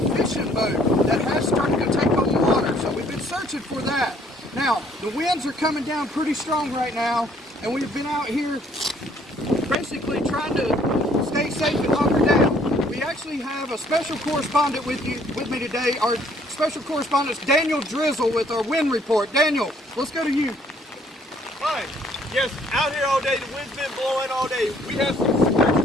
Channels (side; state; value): both; normal; correlation 0.63